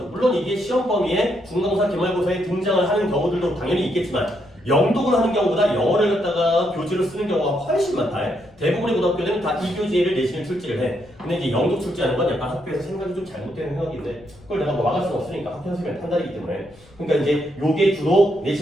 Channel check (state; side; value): noise; left; rumble, 26 dB below the sound